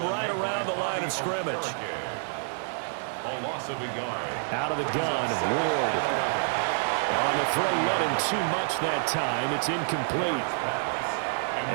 right around the line of scrimmage. A loss of a yard. Out of the gun, Ward. On the throw, let him too much that time. It's incomplete.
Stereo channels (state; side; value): silent; left; 59 dB below the other